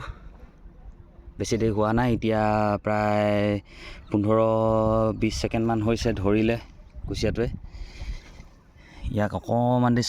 বেছি দেৰি হোৱা নাই, এতিয়া প্ৰায় 15-20 ছেকেণ্ডমান হৈছে ধৰিলে কুচিয়াটোৱে। ইয়াক অকণমান দি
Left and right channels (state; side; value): identical; both; correlation 1.00